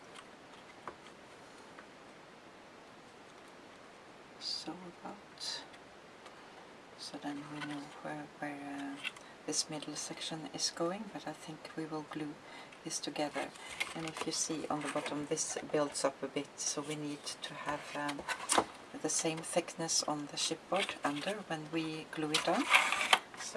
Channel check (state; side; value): identical; both; correlation 1.00